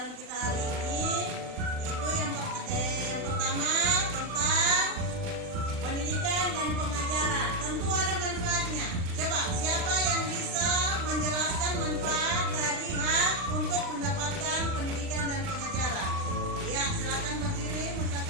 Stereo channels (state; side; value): late; left; 40 ms